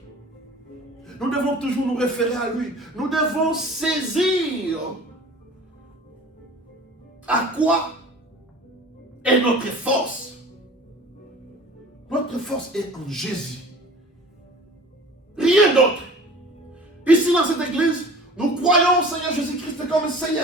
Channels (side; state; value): both; normal; correlation 0.43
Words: Nous devons toujours nous référer à lui. Nous devons saisir à quoi est notre force. Notre force est en Jésus. Rien d'autre. Ici dans cette église, nous croyons au Seigneur Jésus-Christ comme